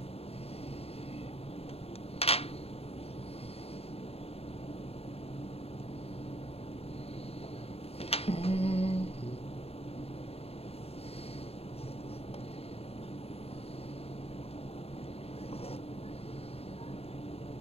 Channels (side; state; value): right; late; 0.29 ms